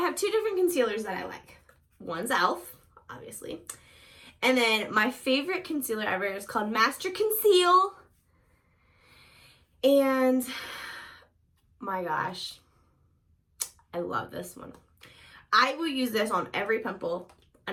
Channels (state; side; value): identical; both; correlation 1.00